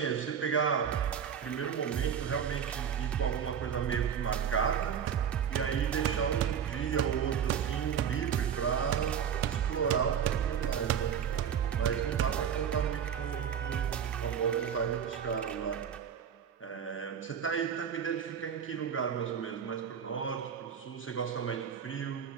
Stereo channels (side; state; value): left; quieter; 8.0 dB